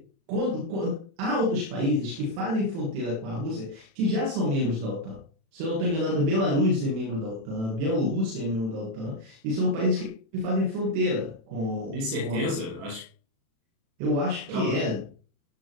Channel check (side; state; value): left; late; 36 ms